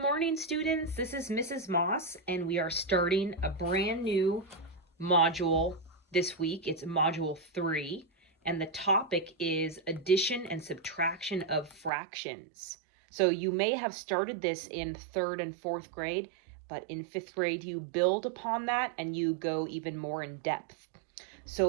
students. This is Mrs. Moss, and we are starting a brand new module this week. It's module 3, and the topic is addition and subtraction of fractions. So you may have started this in 3rd and 4th grade, but in 5th grade you build upon that and you go even more in depth.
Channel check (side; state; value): left; drops out; at 11.9 s